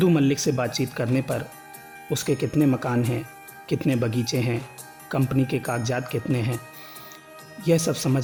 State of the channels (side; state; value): both; identical; correlation 1.00